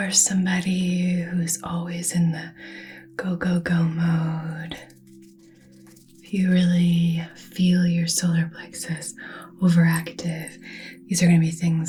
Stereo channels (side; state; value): both; identical; correlation 1.00